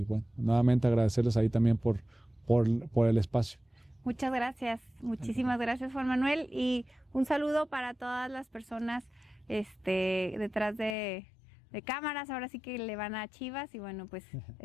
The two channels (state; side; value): drops out; right; at 11.0 s